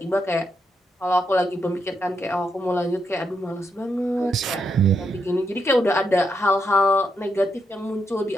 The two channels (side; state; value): both; normal; correlation 0.80